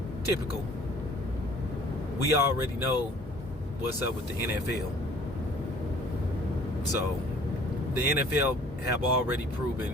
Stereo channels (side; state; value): both; normal; correlation 0.53